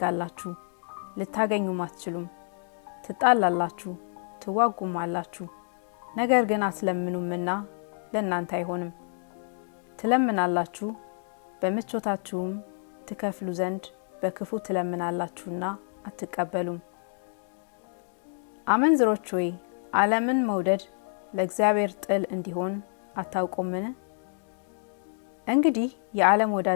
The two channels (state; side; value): silent; right; digital silence